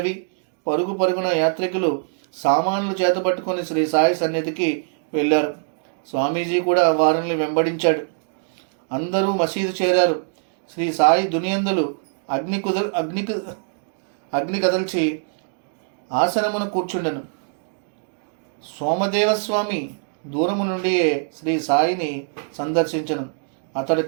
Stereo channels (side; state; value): left; silent; digital silence